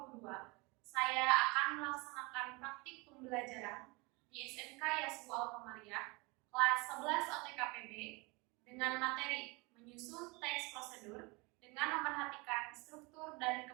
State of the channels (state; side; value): quieter; left; 26.9 dB